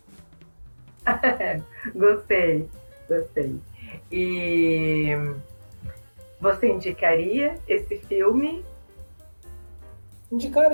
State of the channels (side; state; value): both; inverted; correlation -1.00